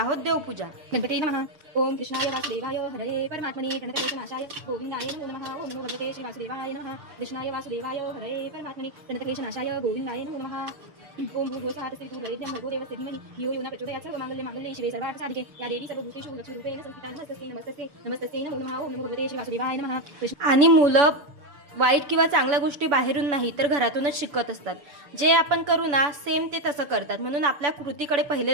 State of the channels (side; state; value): left; late; 7.0 ms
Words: देवपूजा. गणपती नमः. ओम कृष्णाय वासुदेवाय हरे परमात्मने प्रणतक्लेशनाशाय गोविंदाय नमो नमः. ओम नमो भगवते श्री वासुदेवाय नमः. कृष्णाय वासुदेवाय हरे परमात्मने प्रणतक्लेशनाशाय गोविंदाय नमो नमः. ओम भूर्भुवस्वाहा तस्मै भूर्भुवस्वाहा भर्गो देवस्य धीमहि धियो यो न प्रचोदयात्. सर्वमंगल्ये मांगल्ये शिवे सर्वार्थ साधिके या देवी सर्वभूतेषु लक्ष्मीरूपेण संस्थिता नमस्तस्यै नमस्तस्यै नमस्तस्यै नमो नमः. ओम नमो भगवते श्री वासुदेवाय नमः. आणि मुलं वाईट किंवा चांगल्या गोष्टी बाहेरून नाही तर घरातूनच शिकत असतात. जे आपण करू ना सेम ते तसं करतात. म्हणून आपल्या कृतीकडे